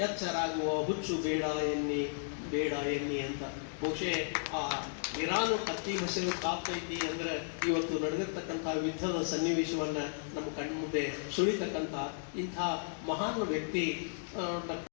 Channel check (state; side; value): silent; right; digital silence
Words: ಎಚ್ಚರಾಗುವ ಹುಚ್ಚು ಬೇಡ ಎನ್ನಿ ಅಂತ. ಬಹುಶಃ ಆ ಇರಾನು ಕತ್ತಿ ಮಸೆದು ಕಾಪ್ತೈತಿ ಅಂದ್ರೆ ಇವತ್ತು ನಡೆದಿರ್ತಕ್ಕಂಥ ಯುದ್ಧದ ಸನ್ನಿವೇಶವನ್ನ ನಮ್ಮ ಕಣ್ಮುಂದೆ ಸುಳಿತಕ್ಕಂಥ ಇಂಥ ಮಹಾನ್ ವ್ಯಕ್ತಿ